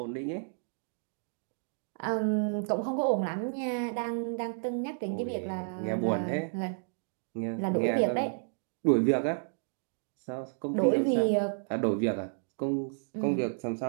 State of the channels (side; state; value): left; silent; digital silence